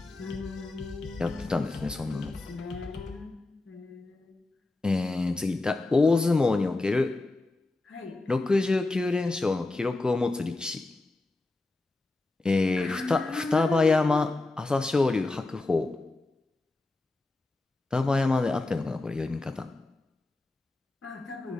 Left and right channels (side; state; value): right; quieter; 3.0 dB